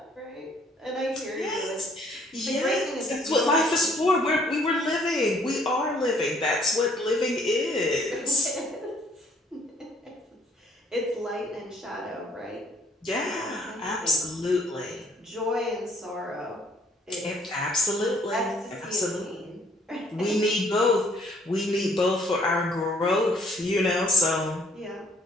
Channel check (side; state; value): both; normal; correlation 0.62